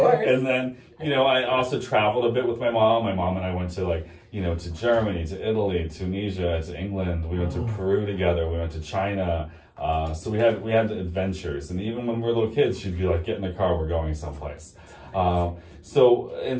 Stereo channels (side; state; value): both; identical; correlation 1.00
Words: And then, you know, I also traveled a bit with my mom. My mom and I went to to Germany, to Italy, Tunisia, to England. We went to Peru together. We went to China. So we had adventures, and even when we were little kids, she'd be like, "Get in the car, we're going someplace."